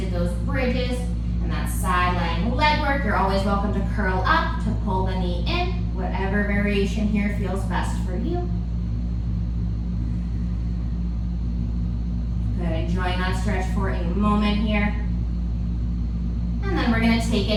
those bridges and that side lying leg work, you're always welcome to curl up, to pull the knee in, whatever variation variation here feels best for you. Good, enjoying that stretch for a moment here. And then we're gonna take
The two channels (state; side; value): identical; both; correlation 1.00